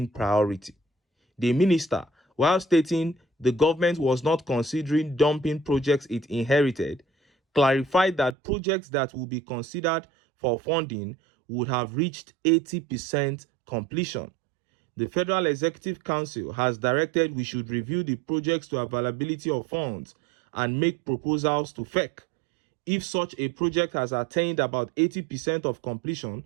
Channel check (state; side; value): drops out; left; at 8.3 s